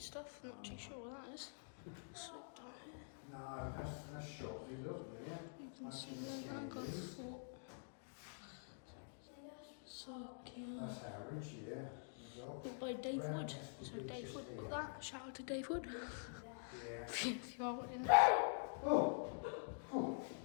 stuff. Not too sure what that is. Slip down here. No, that's shot. You can see the Languard Fort. So That's average, yeah. built by Dave Wood. So Dave Wood built that. Shout out to Dave Wood. If you are wanting all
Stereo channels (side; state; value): right; silent; digital silence